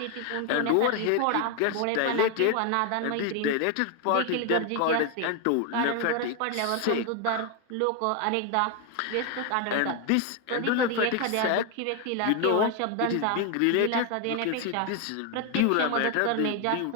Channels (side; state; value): both; different; correlation 0.01